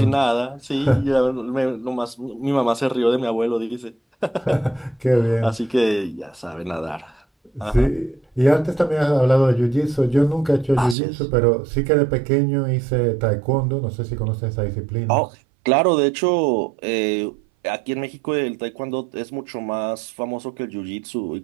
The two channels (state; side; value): drops out; left; at 11.0 s